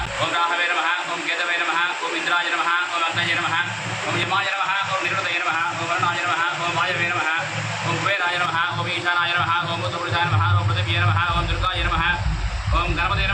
ओम राहवे नमः ओम केतवे नमः ओम इंद्राय नमः ओम अग्नये नमः ओम यमाय नमः ओम निरुतये नमः ओम वरुणाय नमः ओम वायवे नमः ओम कुबेराय नमः ओम ईशानाय नमः ओम उत्तरपुरुषाय नमः ओम पृथिव्यै नमः ओम दुर्गाय नमः ओम गणपतये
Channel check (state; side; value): identical; both; correlation 1.00